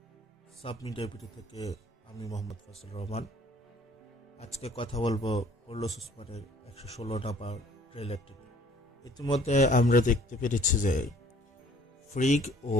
সাব মিডিয়া ভিডিও থেকে আমি মোহাম্মদ ফজল রহমান। আজকে কথা বলবো কার্লোস ওসমানের 116 নাম্বার ট্রেলারটি নিয়ে। ইতিমধ্যে আমরা দেখতে পেরেছি যে ফ্রিগ ও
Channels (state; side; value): normal; both; correlation 0.56